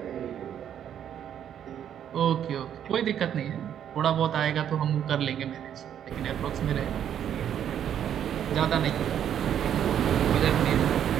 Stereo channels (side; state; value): left; quieter; 9.6 dB